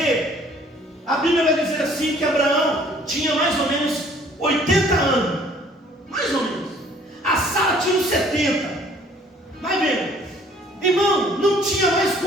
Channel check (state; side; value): normal; both; correlation 0.57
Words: a Bíblia vai dizer assim, que Abraão tinha mais ou menos 80 anos, mais ou menos. A Sara tinha uns 70. Vai vendo, irmão, não tinha mais